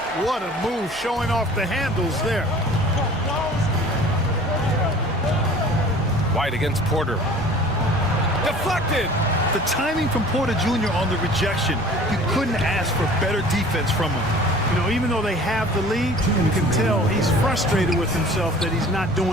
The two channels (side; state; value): both; normal; correlation 0.46